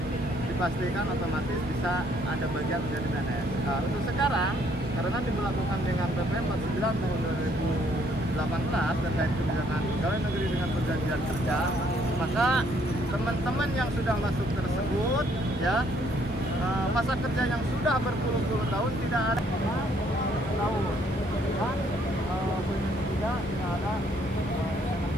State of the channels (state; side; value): normal; both; correlation 0.66